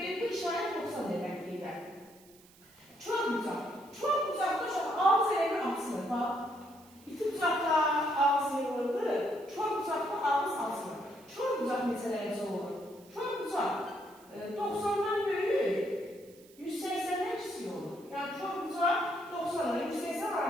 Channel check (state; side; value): noise; right; hiss, 26 dB below the sound